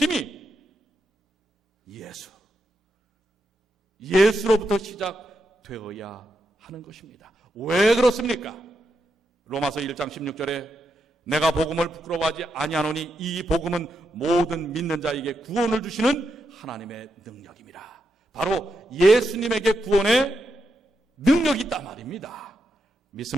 예수로부터 시작되어야 하는 것입니다. 왜 그렇습니까? 로마서 1장 16절에 내가 복음을 부끄러워하지 아니하노니 이 복음은 모든 믿는 자에게 구원을 주시는 하나님의 능력입니다. 바로 예수님에게 구원의 능력이 있단 말입니다.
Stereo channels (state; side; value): normal; both; correlation 0.84